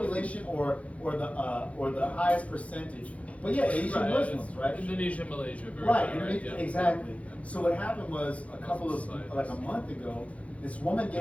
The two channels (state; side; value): late; right; 0.065 ms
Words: or the highest percentage. But yeah, Asian Right, Muslims, it's right? Indonesia, Malaysia, very Right, high, and yeah. exactly. So what happened was Societies. like a month ago, this woman